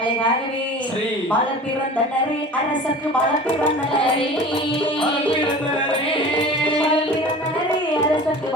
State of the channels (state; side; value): normal; both; correlation 0.40